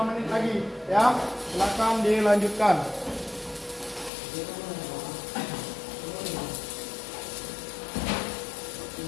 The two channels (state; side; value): drops out; right; at 4.1 s